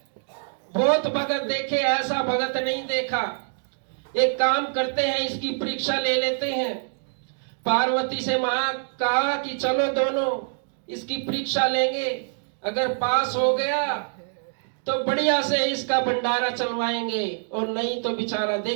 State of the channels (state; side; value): silent; left; digital silence